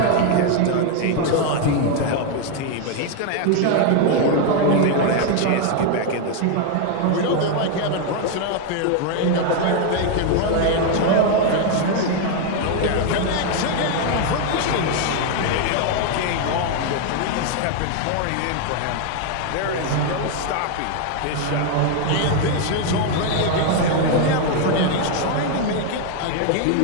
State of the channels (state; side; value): different; both; correlation 0.00